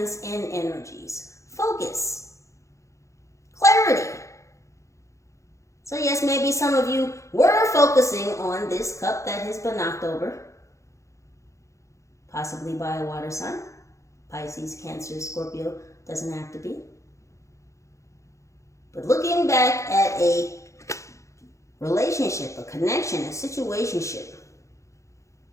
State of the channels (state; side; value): late; right; 0.15 ms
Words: and energies. Focus. Clarity. So yes, maybe some of you were focusing on this cup that has been knocked over, possibly by a water sign. Pisces, Cancer, Scorpio, doesn't have to be. But looking back at a relationship, a connection, a situationship,